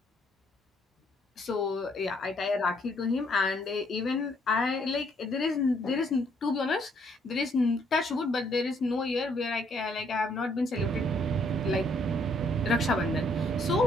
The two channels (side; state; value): both; normal; correlation 0.68